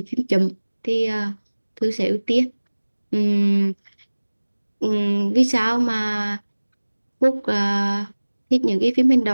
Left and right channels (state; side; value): inverted; both; correlation -1.00